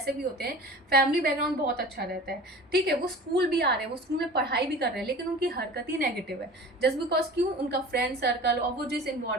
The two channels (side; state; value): both; normal; correlation 0.39